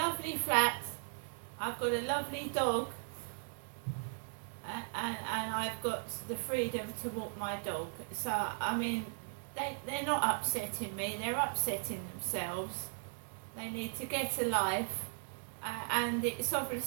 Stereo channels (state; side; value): silent; left; digital silence